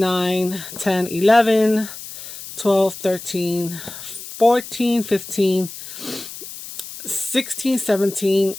10, 11, 12, 13, 14, 15, 16, 17,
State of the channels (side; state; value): left; noise; hiss, 12 dB below the sound